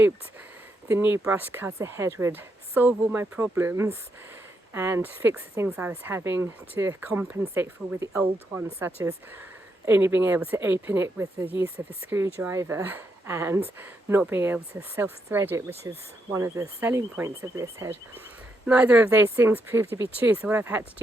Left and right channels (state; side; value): normal; both; correlation 0.80